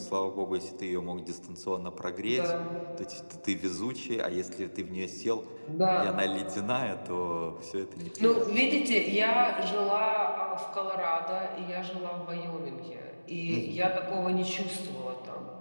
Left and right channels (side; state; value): both; inverted; correlation -1.00